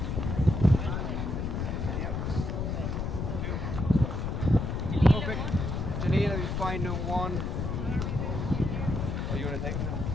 Perfect. Janina, we find one. Are you going to take it?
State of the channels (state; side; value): noise; left; rumble, 2 dB below the sound